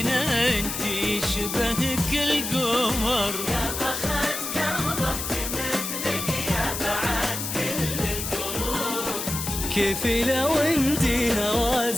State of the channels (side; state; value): left; noise; hiss, 4 dB below the sound